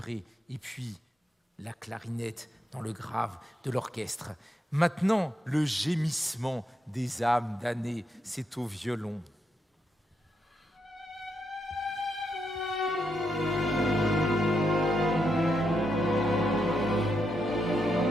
et puis la clarinette dans le grave de l'orchestre. Maintenant, le gémissement des âmes damnées, c'est au violon.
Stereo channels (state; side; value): normal; both; correlation 0.81